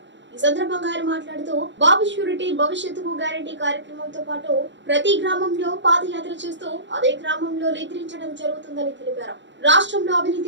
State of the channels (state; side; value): late; left; 0.53 ms